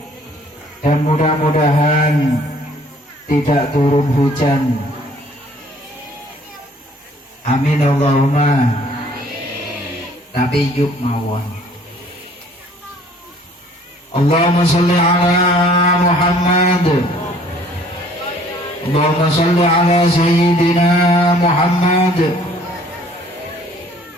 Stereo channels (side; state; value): both; normal; correlation 0.57